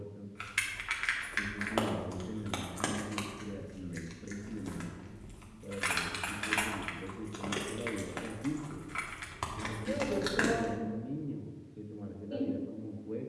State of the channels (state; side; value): identical; both; correlation 1.00